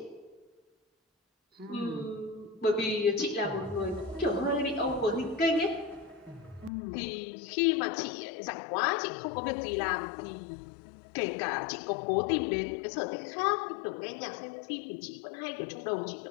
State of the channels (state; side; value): drops out; right; at 6.7 s